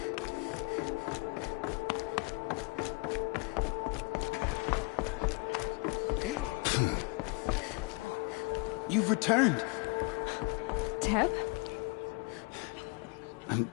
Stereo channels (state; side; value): quieter; right; 29.2 dB